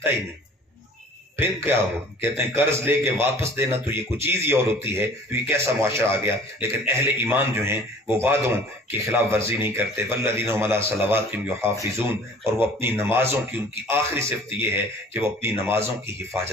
ہی نہیں. پھر کیا ہو؟ کہتے ہیں قرض لے کے واپس دینا تو یہ کچھ چیز ہی اور ہوتی ہے. تو یہ کیسا معاشرہ آ گیا. لیکن اہل ایمان جو ہیں وہ وعدوں کی خلاف ورزی نہیں کرتے. والذین هم علی صلواتہم یحافظون، اور وہ اپنی نمازوں کی، ان کی آخری صفت یہ ہے کہ وہ اپنی نمازوں کی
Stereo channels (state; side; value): normal; both; correlation 0.48